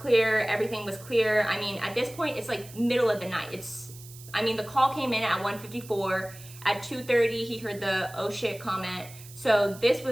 everything was clear. I mean, at this point, it's like middle of the night. The call came in at 1:54. At 2:30, he heard the "oh shit" comment. So this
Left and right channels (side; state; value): right; noise; hiss, 18 dB below the sound